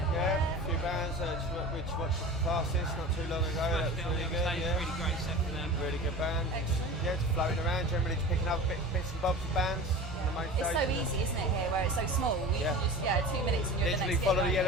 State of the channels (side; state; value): both; normal; correlation 0.35